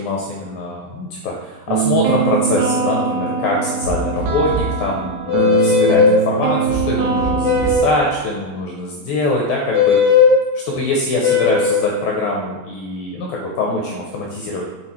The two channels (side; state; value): both; normal; correlation 0.04